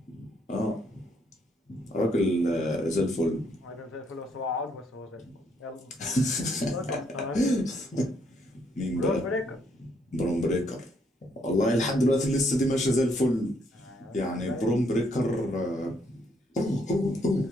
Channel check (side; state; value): both; normal; correlation 0.71